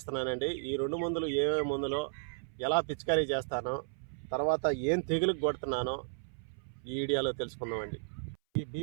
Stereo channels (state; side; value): silent; left; 55 dB below the other